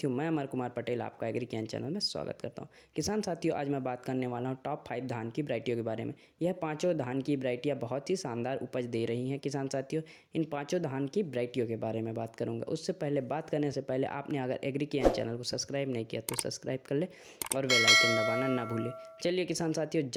मैं अमर कुमार पटेल आपका एग्री ज्ञान चैनल में स्वागत करता हूं। किसान साथियों, आज मैं बात करने वाला हूं टॉप 5 धान की वैरायटियों के बारे में। यह पांचों धान की वैरायटियां बहुत ही शानदार उपज दे रही हैं। किसान साथियों, इन पांचों धान की वैरायटियों के बारे में बात करूंगा। उससे पहले बात करने से पहले आपने अगर एग्री ज्ञान चैनल को सब्सक्राइब नहीं किया तो सब्सक्राइब कर ले और बेल आइकन दबाना ना भूलें। चलिए किसान साथियों,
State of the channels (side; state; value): both; identical; correlation 1.00